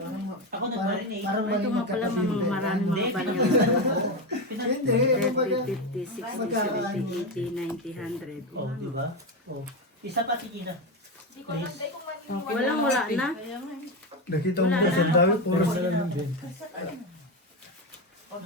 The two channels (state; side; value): normal; both; correlation 0.14